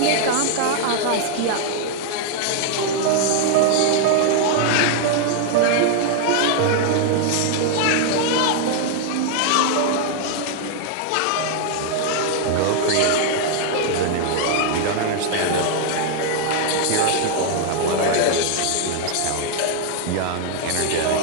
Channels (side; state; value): both; different; correlation 0.00